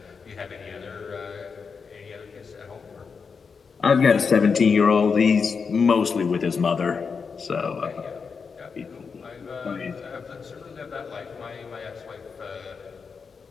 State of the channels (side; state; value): right; quieter; 5.5 dB